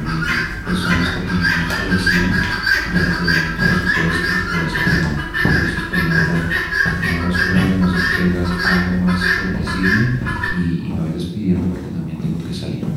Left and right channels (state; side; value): identical; both; correlation 1.00